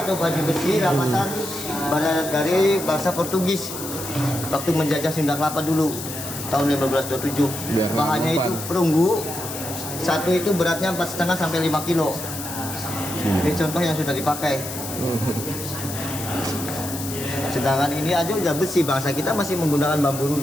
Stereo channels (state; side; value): noise; left; hiss, 8 dB below the sound